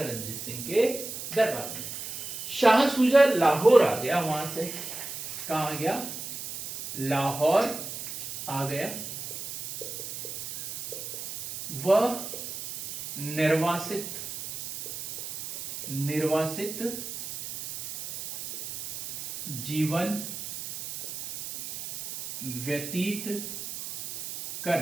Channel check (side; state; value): right; noise; hiss, 8 dB below the sound